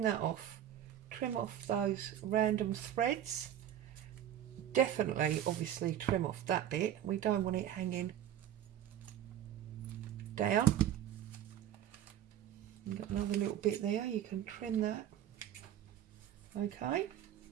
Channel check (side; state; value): left; quieter; 10.8 dB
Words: that off, trim off those random threads. Definitely, obviously, trim off that bit. We don't want it hanging down. You've got another little bit there, you can trim that. Okay,